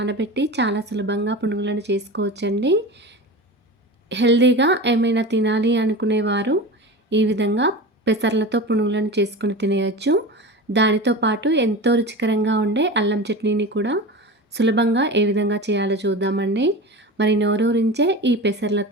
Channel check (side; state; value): both; normal; correlation 0.29